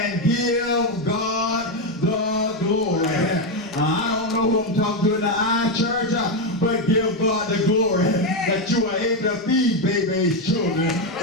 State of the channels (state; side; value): normal; both; correlation 0.07